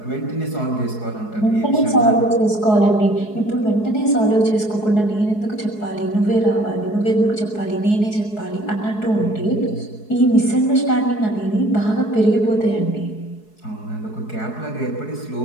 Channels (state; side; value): late; right; 4.7 ms